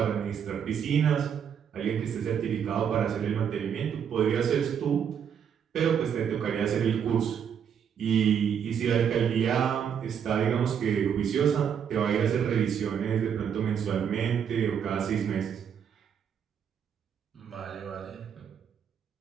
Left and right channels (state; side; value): quieter; left; 7.9 dB